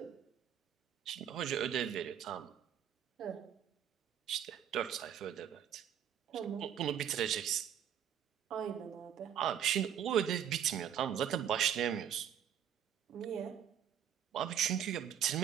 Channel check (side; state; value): left; quieter; 9.4 dB